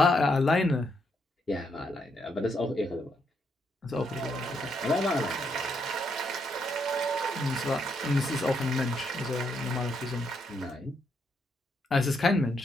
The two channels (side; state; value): both; normal; correlation 0.77